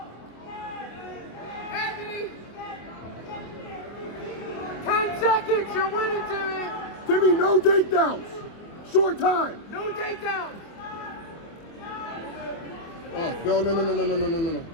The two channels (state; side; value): late; right; 24 ms